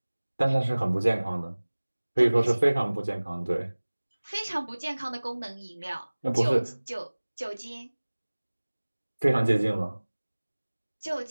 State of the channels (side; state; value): both; inverted; correlation -1.00